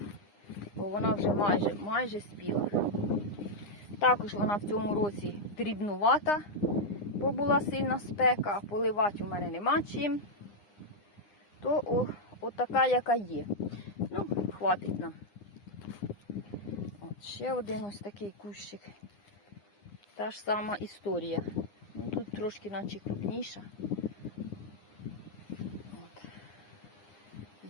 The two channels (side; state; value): right; late; 9.8 ms